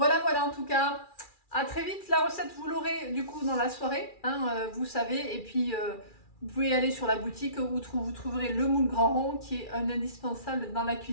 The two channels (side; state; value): right; late; 2.3 ms